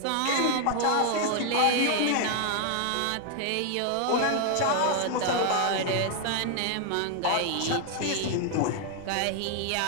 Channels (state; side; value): different; both; correlation 0.00